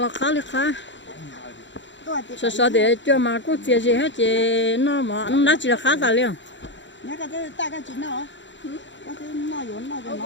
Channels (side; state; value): right; late; 0.54 ms